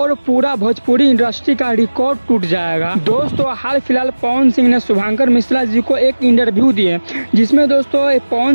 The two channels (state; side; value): inverted; both; correlation -1.00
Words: पूरा भोजपुरी इंडस्ट्री का रिकॉर्ड टूट जाएगा। दोस्तों हाल फिलहाल पवन सिंह ने शुभंकर मिश्रा जी को एक इंटरव्यू दिए जिसमें दोस्तों